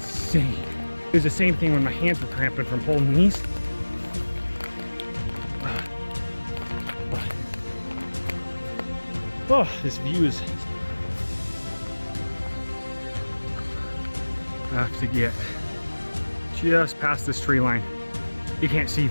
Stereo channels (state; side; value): inverted; both; correlation -1.00